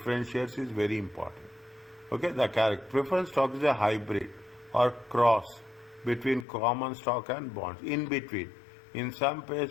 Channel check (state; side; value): drops out; right; at 6.5 s